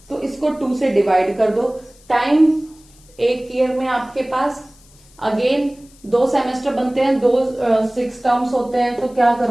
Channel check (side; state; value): left; noise; hiss, 27 dB below the sound